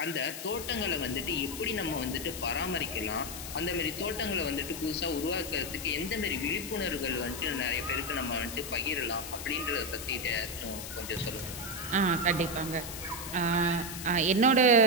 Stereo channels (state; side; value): noise; left; hiss, 9 dB below the sound